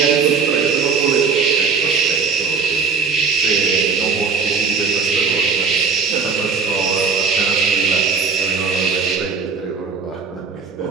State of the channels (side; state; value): left; quieter; 5.3 dB